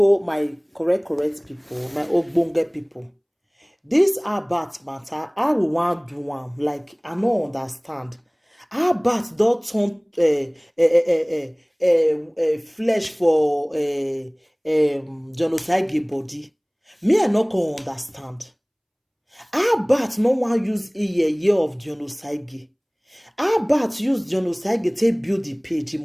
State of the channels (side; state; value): both; identical; correlation 1.00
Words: my correct people, my ogbonge people. This about matter, I will want do one like I no understand. How about don't turn flesh for genocide body? Me I not can understand. How about no one use a year of genocide? How about use genocide to build the page